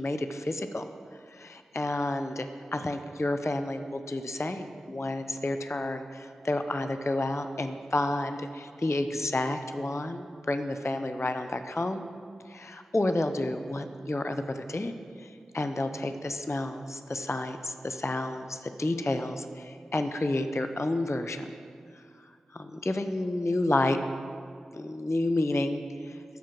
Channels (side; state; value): both; normal; correlation 0.93